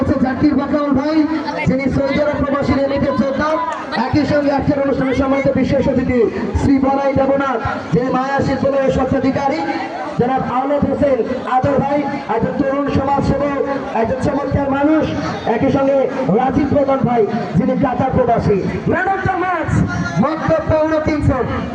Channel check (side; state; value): both; identical; correlation 1.00